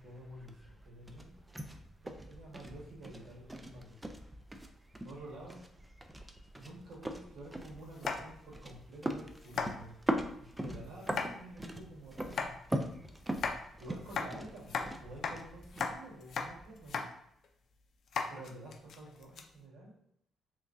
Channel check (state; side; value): normal; both; correlation 0.79